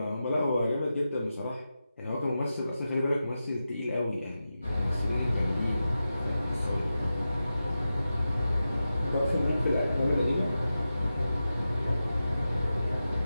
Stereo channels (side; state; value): both; inverted; correlation -0.92